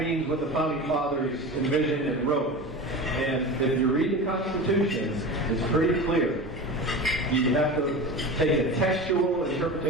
means what the Founding Fathers envisioned and wrote. And if you read the Constitution, it's pretty clear. You have to take a textual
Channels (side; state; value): both; normal; correlation 0.30